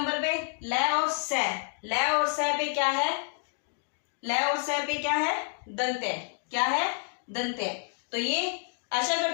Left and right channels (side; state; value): right; silent; 57 dB below the other